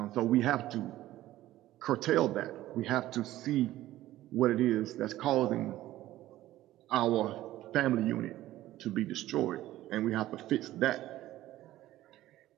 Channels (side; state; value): left; quieter; 15.0 dB